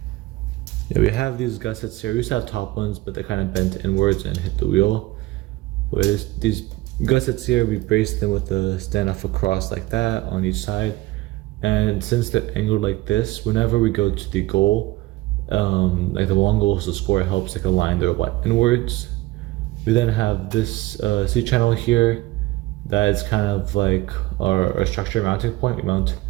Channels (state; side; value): quieter; left; 18.3 dB